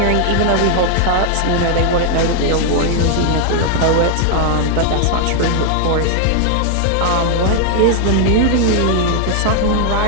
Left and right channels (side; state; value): both; different; correlation 0.00